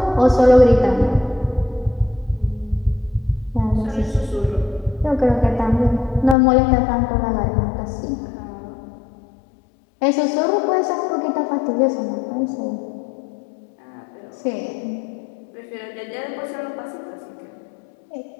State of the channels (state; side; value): drops out; right; at 6.4 s